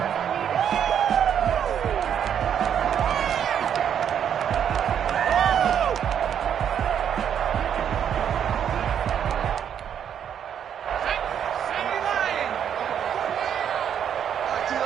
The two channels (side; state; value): left; quieter; 8.8 dB